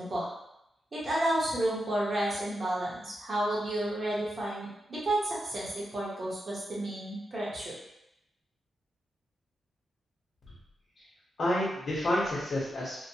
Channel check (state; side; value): normal; both; correlation 0.86